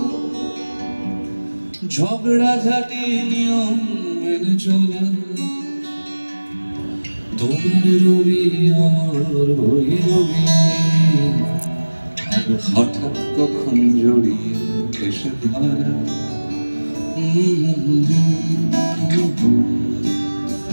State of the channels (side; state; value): both; inverted; correlation -1.00